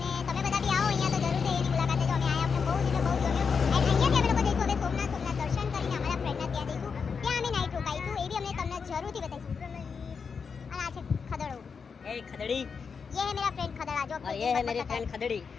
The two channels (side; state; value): right; quieter; 5.7 dB